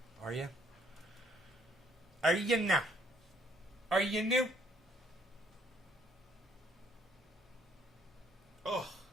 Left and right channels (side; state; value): both; normal; correlation 0.64